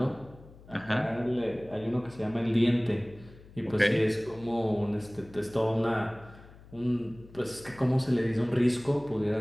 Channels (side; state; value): left; noise; hum, 21 dB below the sound